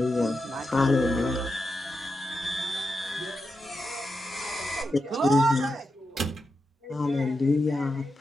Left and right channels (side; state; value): both; normal; correlation 0.88